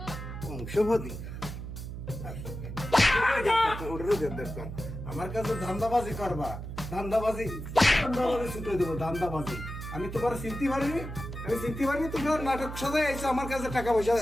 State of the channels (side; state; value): right; noise; hum, 8 dB below the sound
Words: বংশবতী, আমার কাছে ধান্দাবাজি করবা, ধান্দাবাজি ধান্দাবাজি ছুটে দেবো, ধান্দাবাজি। আমি তোমার চিনতে পারিনি, আমি চিনতে পারিনি, তোমার নাটক সাজায় আইসো আমার কাছে টাকা পয়সা